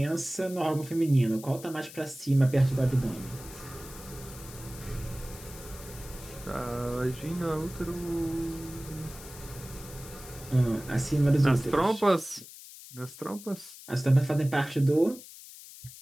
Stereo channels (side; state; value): left; noise; hiss, 16 dB below the sound